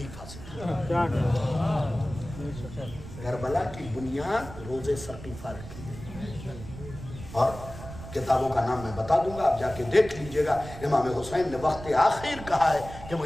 سے تھا۔ کربلا کی بنیاد روزے ثقیفہ رکھی ہے، اور کتابوں کا نام میں بتا دوں گا، آپ جا کے دیکھ لیجئے گا۔ امام حسین نے وقت آخر کہا ہے کہ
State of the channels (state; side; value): noise; right; rumble, 13 dB below the sound